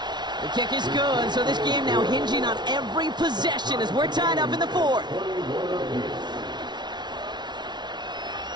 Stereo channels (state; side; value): late; left; 0.20 ms